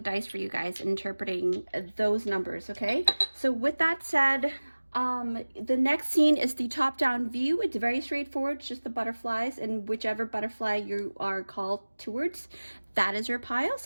for you guys, interpreting those numbers, okay? So with that said, the next scene is the top-down view. It's very straightforward, it's just the butterflies, and whichever butterfly you are called towards, that is your pile.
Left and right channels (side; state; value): both; inverted; correlation -1.00